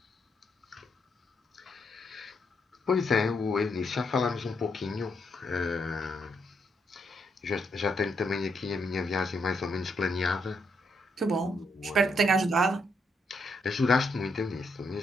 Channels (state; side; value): normal; both; correlation 0.77